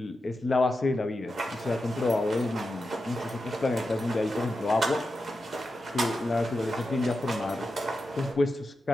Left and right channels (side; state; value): both; normal; correlation 0.90